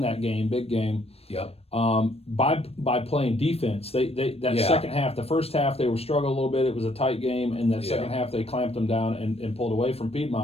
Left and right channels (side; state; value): right; late; 0.29 ms